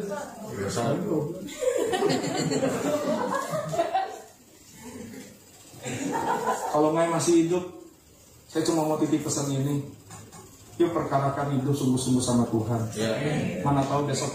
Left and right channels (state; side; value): identical; both; correlation 1.00